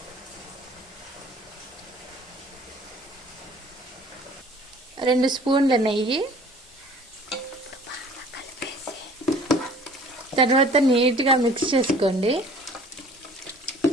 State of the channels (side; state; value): both; normal; correlation 0.50